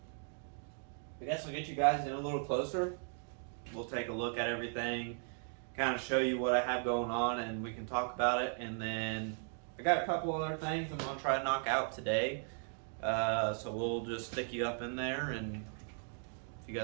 guess I'll get you guys in a little closer. We'll take a look at everything, kind of show you what I have going on, and we can talk about it. And then I got a couple other things I'm gonna try to knock out today. So we'll just stick you up in there, and if you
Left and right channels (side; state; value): left; silent; 53 dB below the other